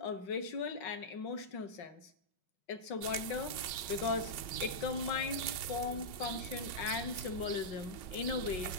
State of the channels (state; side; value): late; right; 5.4 ms